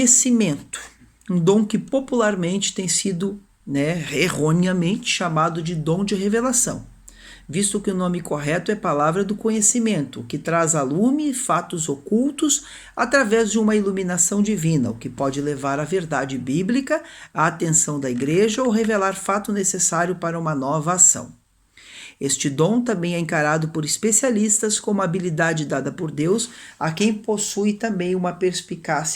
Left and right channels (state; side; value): identical; both; correlation 1.00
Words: um dom que popularmente tem sido, erroneamente chamado de dom de revelação, visto que o nome correto é palavra do conhecimento, que traz a lume fatos ocultos através de uma iluminação divina, o que pode levar à verdade bíblica, à atenção da igreja ou revelar fato necessário para uma nova ação. Este dom também é encarado por especialistas como habilidade dada por Deus a quem possui também uma